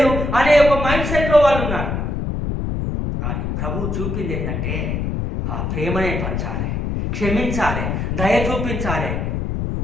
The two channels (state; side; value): noise; left; rumble, 2 dB below the sound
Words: అనే ఒక మైండ్ సెట్లో వాళ్ళు ఉన్నారు. కానీ ప్రభు చూపింది ఏంటంటే, ఆ ప్రేమనే పంచాలి, క్షమించాలి, దయ చూపించాలి,